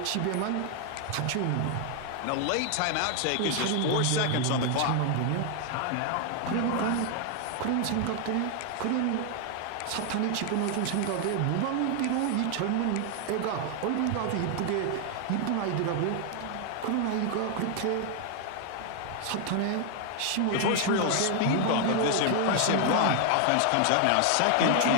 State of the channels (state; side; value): different; both; correlation 0.00